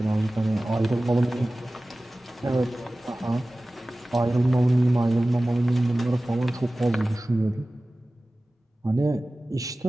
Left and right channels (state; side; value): normal; both; correlation 0.97